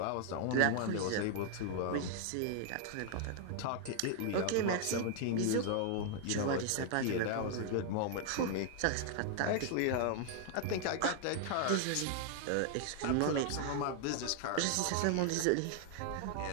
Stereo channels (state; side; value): different; both; correlation 0.00